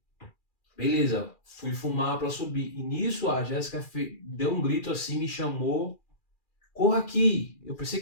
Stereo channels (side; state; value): right; late; 2.4 ms